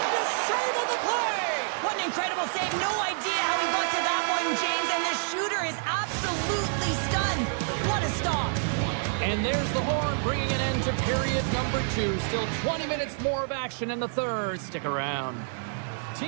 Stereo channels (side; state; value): left; silent; digital silence